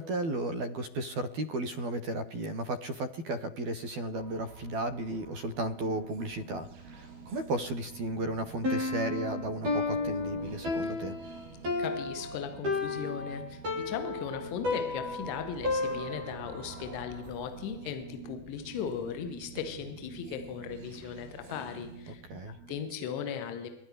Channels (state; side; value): late; left; 12 ms